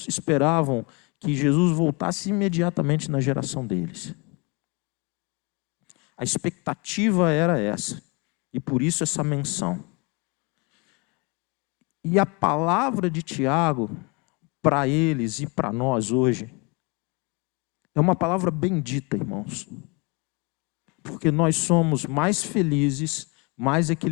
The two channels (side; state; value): right; quieter; 30.1 dB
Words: esperavam que Jesus voltasse imediatamente na geração deles. A expectativa era essa. E por isso essa menção. E a palavra de Tiago, para eles e para nós hoje, é uma palavra bendita, irmãos. Porque nós somos mais felizes, mais